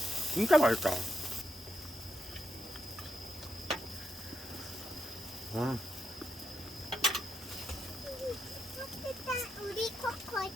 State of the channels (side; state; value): both; normal; correlation 0.83